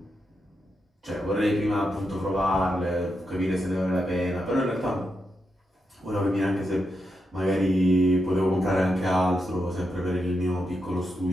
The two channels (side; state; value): both; normal; correlation 0.85